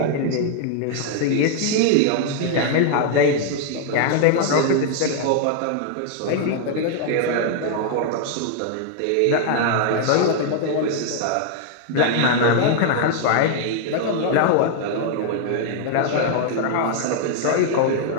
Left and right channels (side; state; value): both; different; correlation 0.00